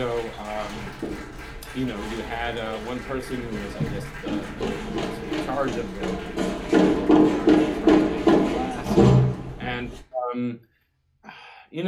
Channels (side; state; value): both; identical; correlation 1.00